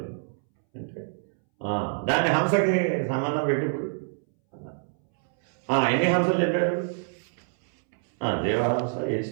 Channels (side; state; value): left; silent; 61 dB below the other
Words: అంటే దాన్ని హంసకి సంబంధం పెట్టి ఇప్పుడు ఎన్ని హంసలు చెప్పారు? దేవహంస,